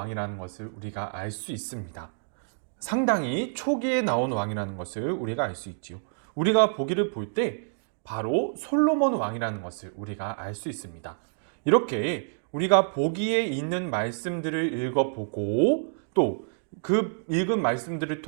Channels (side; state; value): left; silent; digital silence